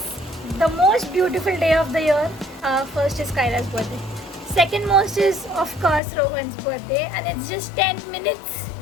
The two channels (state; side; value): drops out; right; at 6.0 s